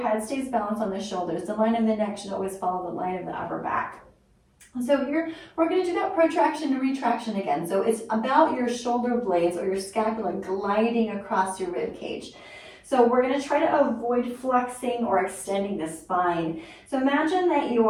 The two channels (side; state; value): both; identical; correlation 1.00